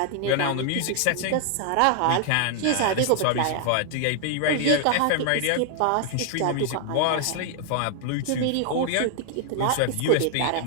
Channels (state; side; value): different; both; correlation 0.00